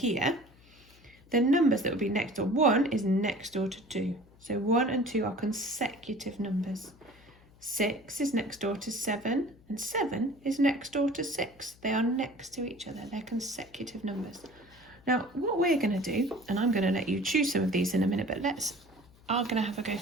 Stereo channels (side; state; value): left; noise; hum, 26 dB below the sound